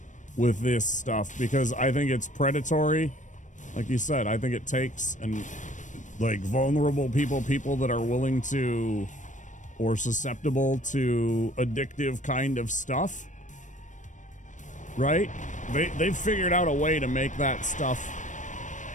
with this stuff because I think it's predatory. Like you said, I think it takes like vulnerable people that are willing to or susceptible to addictive kind of stuff, right? They've figured out a way to make that stuff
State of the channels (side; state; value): right; late; 0.36 ms